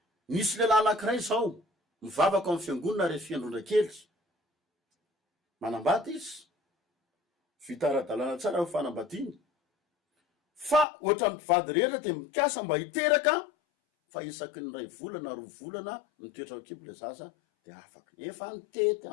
nisy lehilahy anankiray zao mivavaka amin'ny fiangonana rehefa fiandrondra-kely manambady izy vita ara-dalàna tsara ho fanambadiny fa ohatra mpivady rehetra de mikasa mba hiteraka fa isaky ny ray volana roa volana mitoetra kibo le zaza de afaky efa nitety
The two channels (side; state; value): right; drops out; at 10.9 s